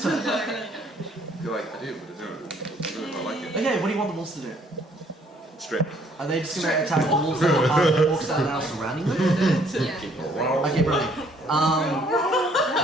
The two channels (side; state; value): both; normal; correlation 0.63